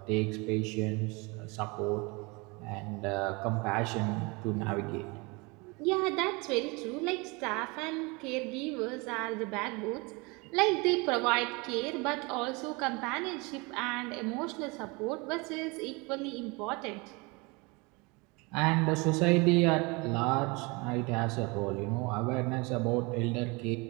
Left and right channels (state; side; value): quieter; left; 27.3 dB